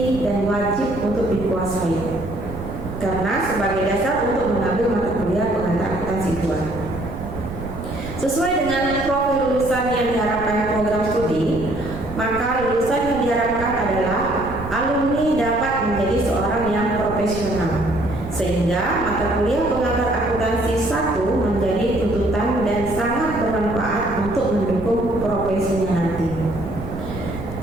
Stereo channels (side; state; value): right; noise; rumble, 10 dB below the sound